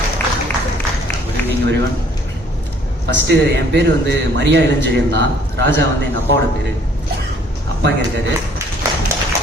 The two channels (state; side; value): normal; both; correlation 0.60